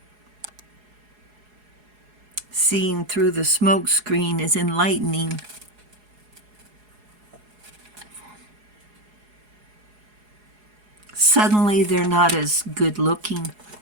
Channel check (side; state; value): left; late; 4.8 ms